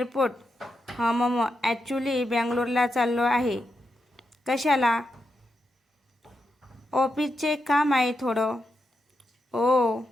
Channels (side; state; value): both; normal; correlation 0.85